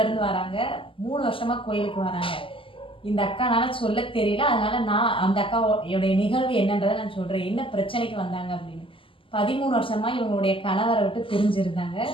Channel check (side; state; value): right; late; 0.25 ms